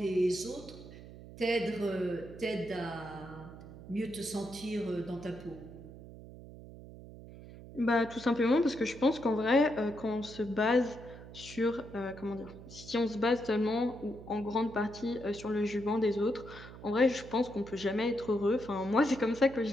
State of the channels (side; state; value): right; noise; hum, 15 dB below the sound